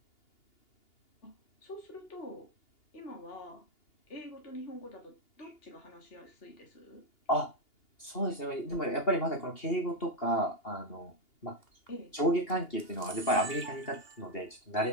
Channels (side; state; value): right; late; 2.8 ms